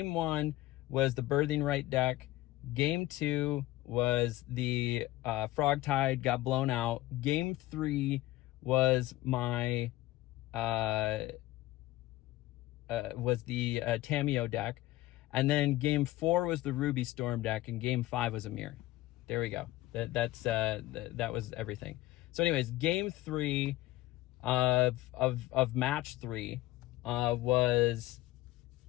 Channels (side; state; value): right; quieter; 16.9 dB